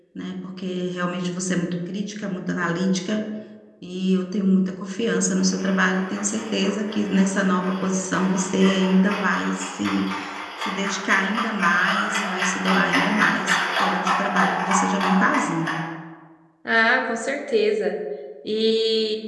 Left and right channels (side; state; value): both; identical; correlation 1.00